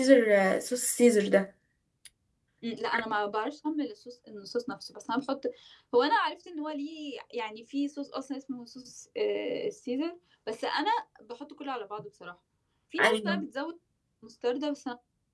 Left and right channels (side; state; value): both; identical; correlation 1.00